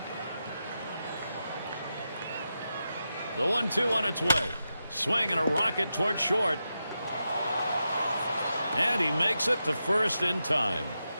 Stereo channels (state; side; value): inverted; both; correlation -0.88